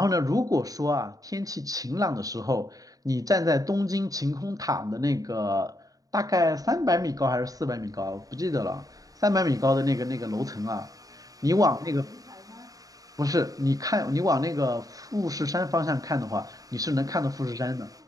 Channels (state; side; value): late; left; 0.17 ms